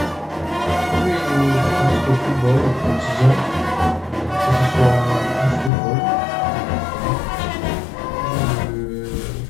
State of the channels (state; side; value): drops out; right; at 5.7 s